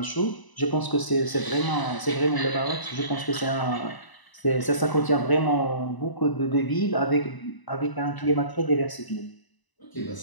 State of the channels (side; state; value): right; late; 1.0 ms